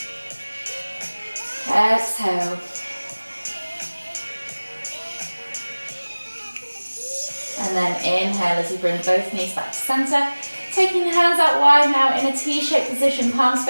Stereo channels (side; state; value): both; inverted; correlation -1.00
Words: Exhale. And then inhale as you bring both knees back to center. Taking the hands out wide now in a T-shaped position, palms